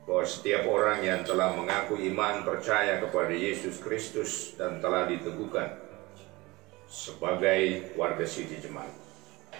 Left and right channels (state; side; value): quieter; left; 22.0 dB